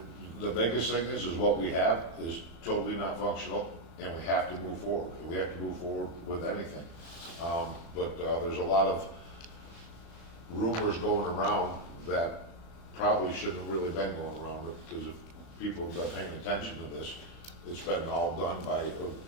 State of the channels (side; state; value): right; late; 35 ms